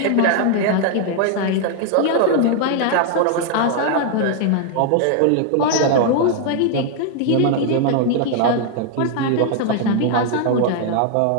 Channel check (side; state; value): both; different; correlation 0.00